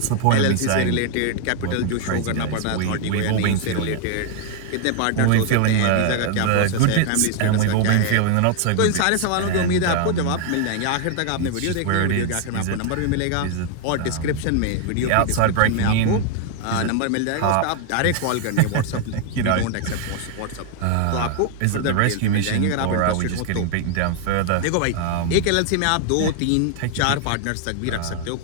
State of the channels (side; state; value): both; different; correlation 0.00